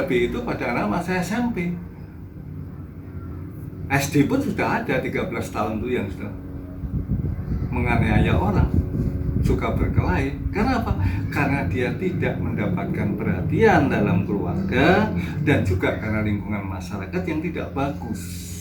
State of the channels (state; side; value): identical; both; correlation 1.00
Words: itu pada anak masa SMP. SD pun sudah ada 13 tahun tuh yang sudah menganiaya orang, suka berkelahi. Karena apa? Karena dia tidak mendapatkan perhatian dalam keluarga dan juga karena lingkungan masyarakat yang tidak bagus.